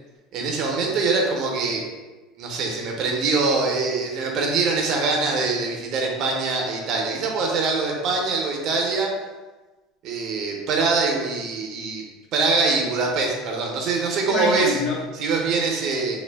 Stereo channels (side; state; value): left; quieter; 3.3 dB